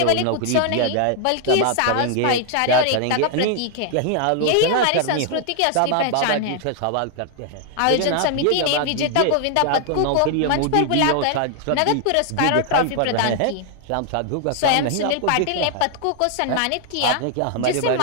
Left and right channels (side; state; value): both; different; correlation 0.00